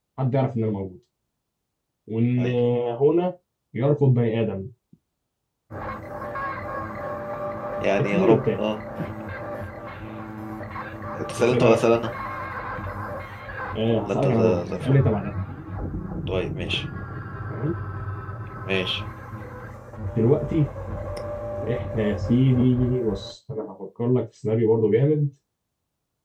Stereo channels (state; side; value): identical; both; correlation 1.00